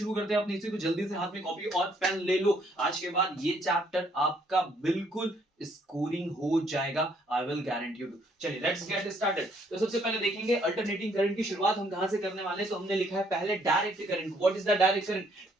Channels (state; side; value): normal; both; correlation 0.67